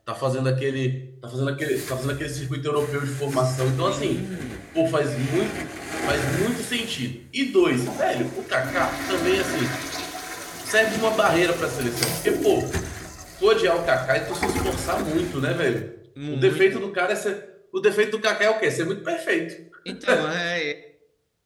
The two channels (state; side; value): identical; both; correlation 1.00